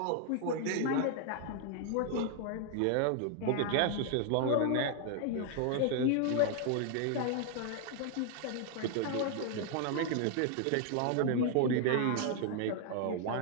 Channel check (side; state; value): both; different; correlation 0.00